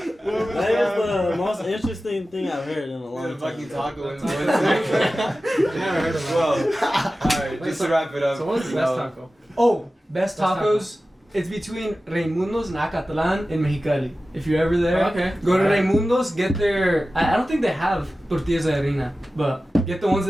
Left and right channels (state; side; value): normal; both; correlation 0.95